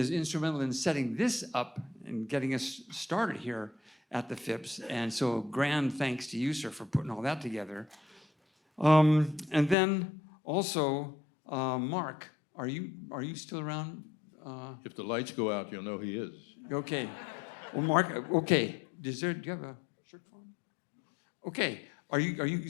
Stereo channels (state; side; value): drops out; right; at 9.8 s